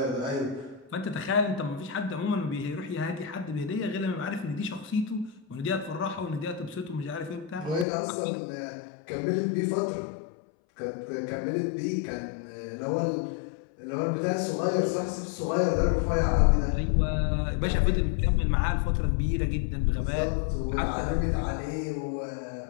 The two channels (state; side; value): drops out; right; at 7.9 s